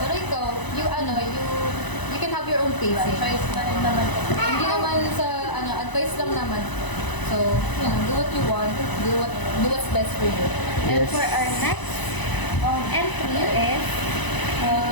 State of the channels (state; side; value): late; right; 1.0 ms